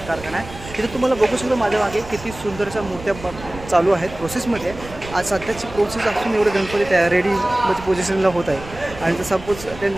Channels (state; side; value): noise; right; rumble, 15 dB below the sound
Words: कारखाना आहे. तिथे तुम्हाला बघू शकतो माझ्या मागे किती सुंदरशा मूर्त्या चालू आहेत प्रोसेसमध्ये. आज सध्याची प्रोसेस असून एवढे गणपती तयार रेडी म्हणजे पोझिशनला होत आहे आणि जर सपोज